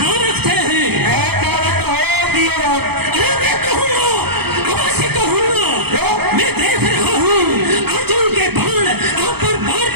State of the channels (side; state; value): left; late; 0.97 ms